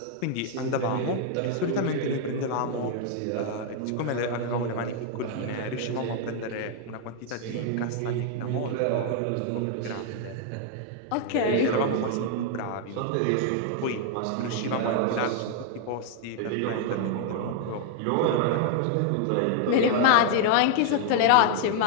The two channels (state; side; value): different; both; correlation 0.00